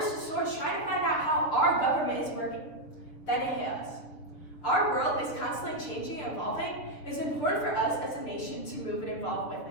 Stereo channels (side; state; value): right; late; 7.1 ms